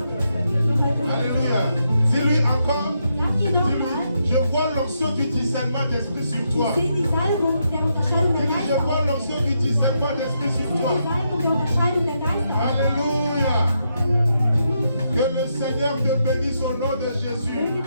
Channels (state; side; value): inverted; both; correlation -0.81